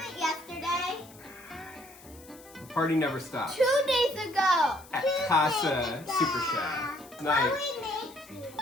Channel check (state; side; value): noise; left; hiss, 22 dB below the sound